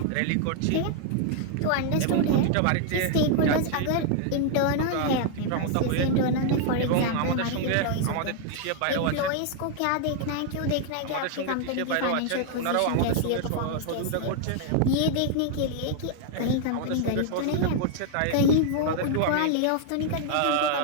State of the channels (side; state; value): both; different; correlation 0.00